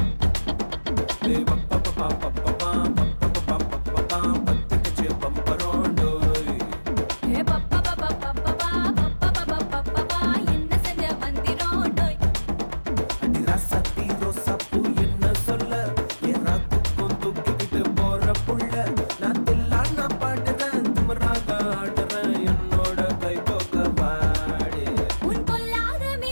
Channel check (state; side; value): inverted; both; correlation -1.00